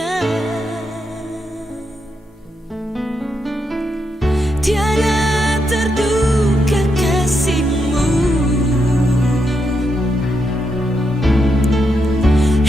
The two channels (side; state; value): both; normal; correlation 0.82